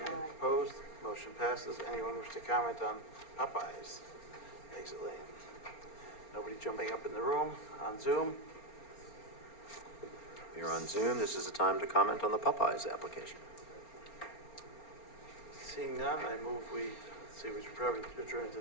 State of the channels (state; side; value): late; right; 4.3 ms